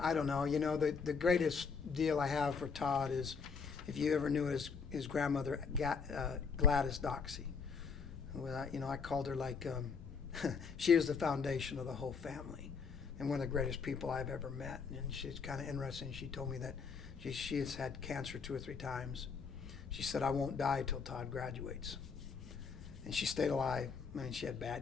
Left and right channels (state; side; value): quieter; right; 5.6 dB